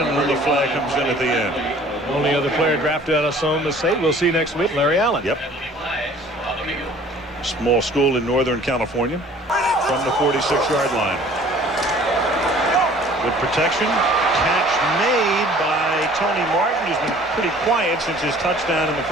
an early flag comes in at the end. Only other player drafted out of Sonoma State. We'll see next week, Larry Allen. Yep. Small school in Northern California. From the 46-yard line. Good protection. Catch made by Tony Martin, who's been pretty quiet since his touchdown in the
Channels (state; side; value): normal; both; correlation 0.51